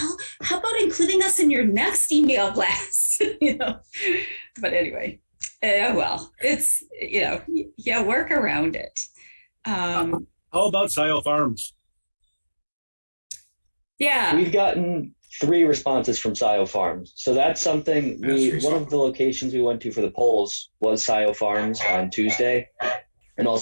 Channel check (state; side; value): inverted; both; correlation -1.00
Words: how about including us in your next email blast? But anyway, it's, work around it. How about Scio Farms? Yeah. We've gotten 3 responses from Scio Farms. So that's something one of the locations we went to for the polls was Scio Farms on Tuesday. And